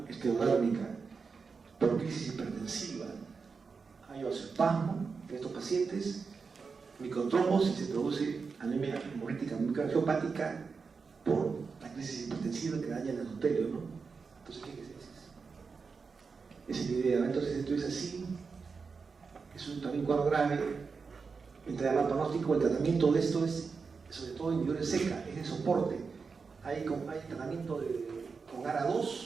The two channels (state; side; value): quieter; left; 5.0 dB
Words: esclerodérmica por crisis hipertensiva. Hay vasoespasmo en estos pacientes, microtrombosis, se produce anemia hemolítica microangiopática por la crisis hipertensiva que daña el endotelio, ¿no? Entonces, ¿qué es eso? Esa es la idea. Entonces, esto es así, es un también cuadro grave, entre mal pronóstico. El tratamiento de esto es, sobre todo en individuales seca, es de soporte. Hay tratamiento con ARA2